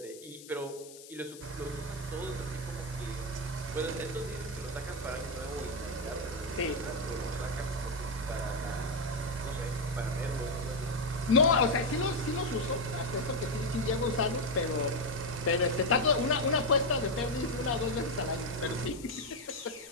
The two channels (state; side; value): noise; left; hiss, 17 dB below the sound